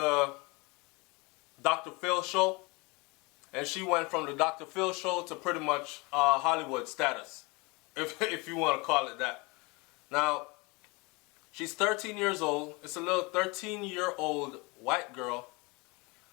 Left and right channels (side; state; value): right; quieter; 26.9 dB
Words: Dr. Phil show, and she went from the Dr. Phil show to pretty much Hollywood status, if you want to call it that. Now, she's 13 years old. It's a little 13-year-old white girl,